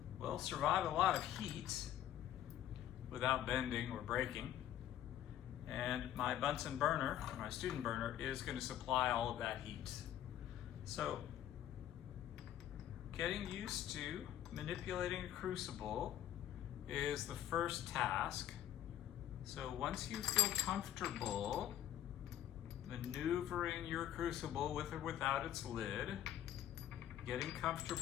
well, survive a lot of heat without bending or breaking. And my Bunsen burner, or my student burner, is going to supply all of that heat. So, getting used to manipulating a crucible is the first task. So once you feel comfortable maneuvering your crucible with or without its lid, getting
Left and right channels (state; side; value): quieter; right; 11.6 dB